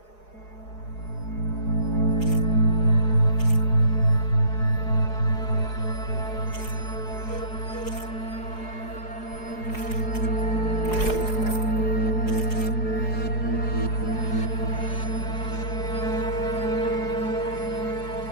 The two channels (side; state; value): right; late; 4.7 ms